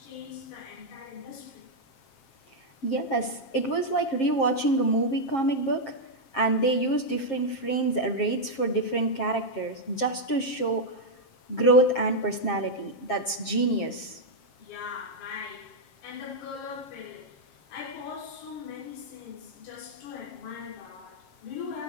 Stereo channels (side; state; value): right; late; 7.5 ms